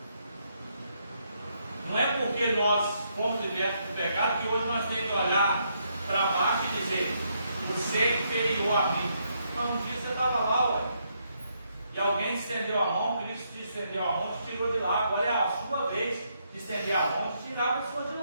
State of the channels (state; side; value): inverted; both; correlation -0.76